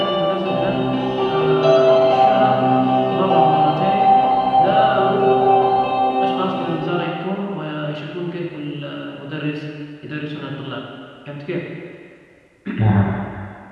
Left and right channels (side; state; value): both; identical; correlation 1.00